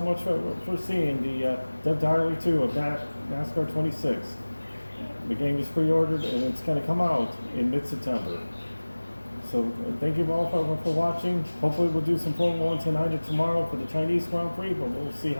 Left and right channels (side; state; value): both; inverted; correlation -1.00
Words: much for seeing the Dev Diary 2 of NASCAR 26. The game is pre-ordered and it's going to come out in mid-September. So thank you all for watching. Hopefully we'll do some Formula 1 tonight or tomorrow for the Chinese Grand Prix, but we'll see